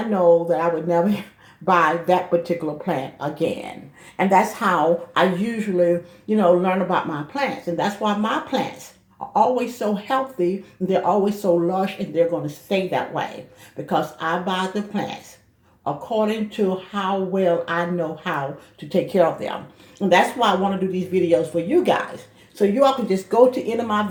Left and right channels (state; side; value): identical; both; correlation 1.00